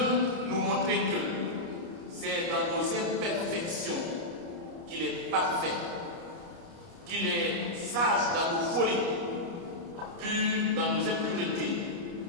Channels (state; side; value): late; left; 29 ms